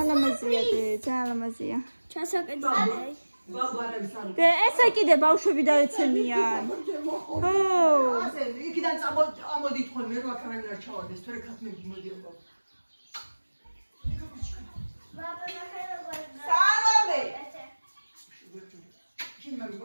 ლამაზია. ჩასაკეთე. ბაბა არის არ. და ესე კიდე ბავშვები დაეცემიან. ხო. ასე იქიდან ამოდით ხოლმე რა კარგი არ ჩავარდეს, თორე ქათმები მოდიოდა. სალომე. შენ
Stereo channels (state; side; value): inverted; both; correlation -1.00